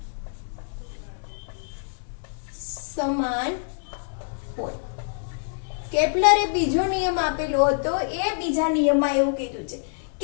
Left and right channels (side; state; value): right; silent; digital silence